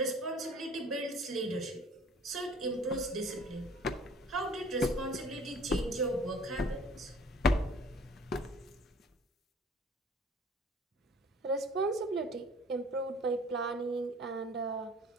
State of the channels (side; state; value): both; normal; correlation 0.51